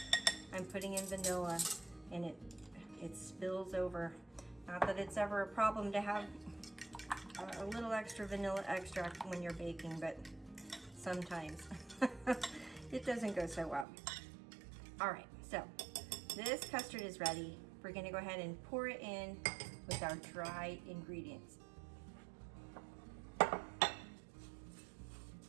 I'm putting in vanilla and it spills over. Not that it's ever a problem to have a little extra vanilla extract when you're baking, but sometimes it doesn't go so well. All right, so this custard is ready. We're gonna go ahead and pour it in with our dry ingredients. All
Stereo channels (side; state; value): left; drops out; at 13.9 s